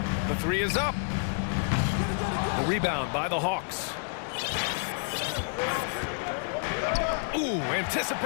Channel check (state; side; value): silent; right; 58 dB below the other